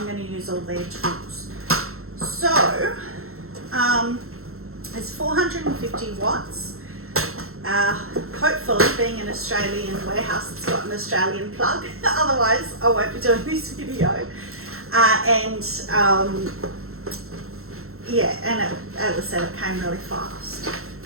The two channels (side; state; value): left; late; 0.62 ms